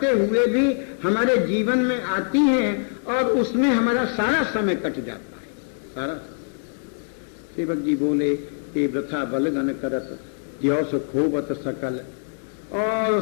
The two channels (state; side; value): silent; right; digital silence